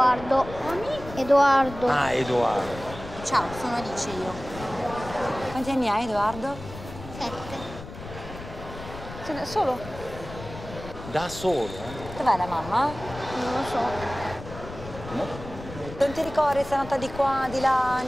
Edoardo. Ah, Edoardo. Ciao, sono Alice io. Quanti anni hai, Edoardo? 7. Sei da solo? Da solo? Dov'è la mamma? Non lo so. No? Non ti ricordi se è andata di qua, di là,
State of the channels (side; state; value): left; noise; rumble, 13 dB below the sound